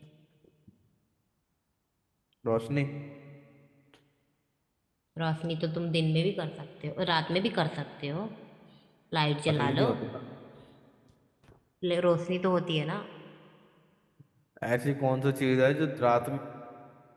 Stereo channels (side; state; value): both; identical; correlation 1.00